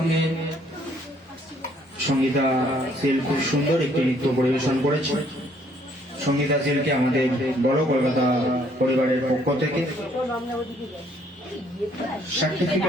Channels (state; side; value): normal; both; correlation 0.65